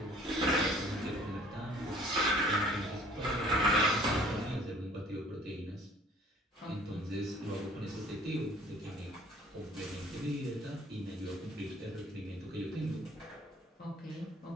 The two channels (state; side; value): normal; both; correlation 0.53